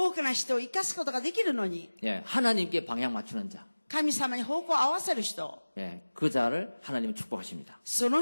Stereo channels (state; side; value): inverted; both; correlation -1.00